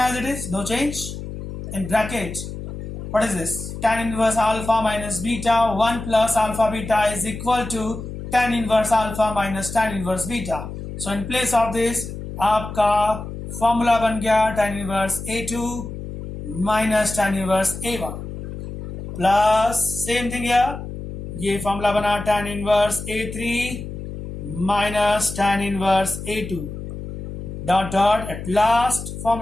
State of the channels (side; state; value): left; noise; hum, 9 dB below the sound